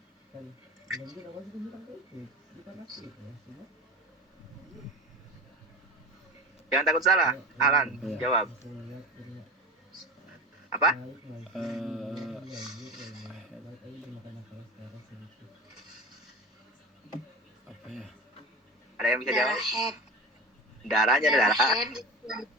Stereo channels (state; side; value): normal; both; correlation 0.32